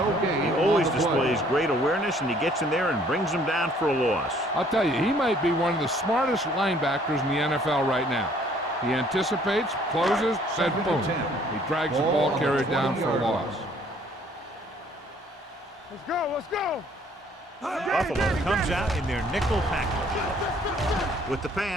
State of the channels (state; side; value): normal; both; correlation 0.60